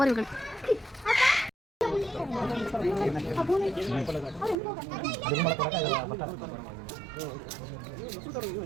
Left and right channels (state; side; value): drops out; left; at 4.5 s